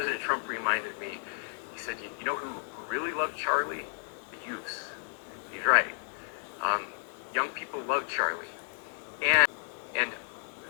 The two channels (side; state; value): right; silent; digital silence